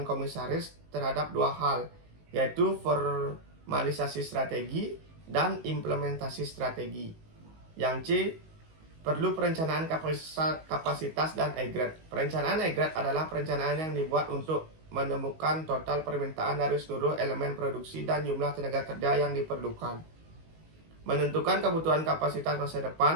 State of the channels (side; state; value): left; late; 19 ms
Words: komisaris terhadap dua hal, yaitu formalisasi strategi dan implementasi strategi. Yang C, perlu perencanaan kapasitas dan aggregate. Perencanaan aggregate adalah perencanaan yang dibuat untuk menemukan total permintaan dari seluruh elemen produksi dan jumlah tenaga kerja yang diperlukan. Menentukan kebutuhan kapasitas masa